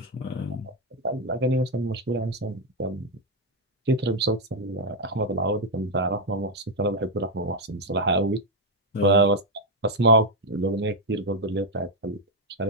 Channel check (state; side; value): normal; both; correlation 0.02